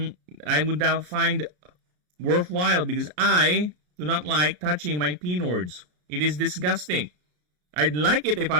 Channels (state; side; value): late; left; 33 ms